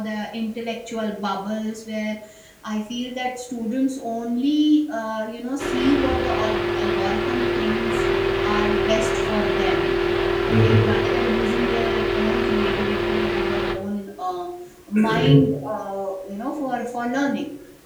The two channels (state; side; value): identical; both; correlation 1.00